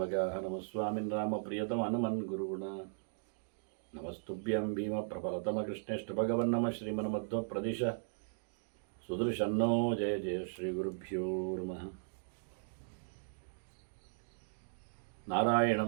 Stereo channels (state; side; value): silent; left; digital silence